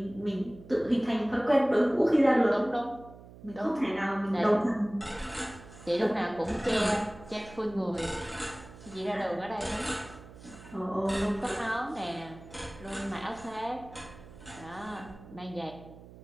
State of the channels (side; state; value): right; noise; hum, 18 dB below the sound